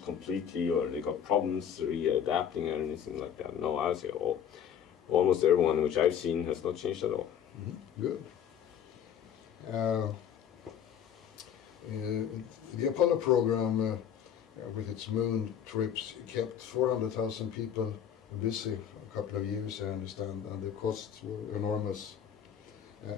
completely, or they got problems readapting or anything like that. No, I would say almost everyone which I've seen has not changed at all. Good. The Apollo program, with its moon trips, kept 400,000 people busy for a couple of years, I understand, and the costs were enormous.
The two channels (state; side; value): quieter; right; 8.8 dB